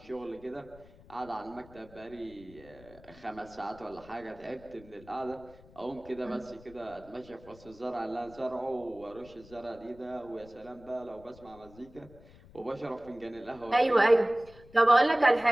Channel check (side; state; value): left; noise; rumble, 22 dB below the sound